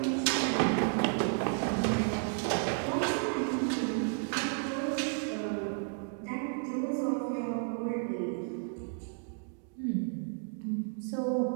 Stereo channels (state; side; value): silent; left; 56 dB below the other